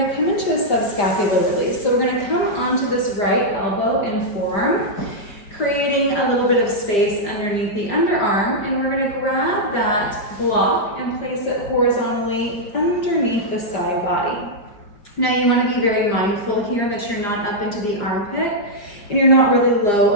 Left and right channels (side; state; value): right; late; 5.0 ms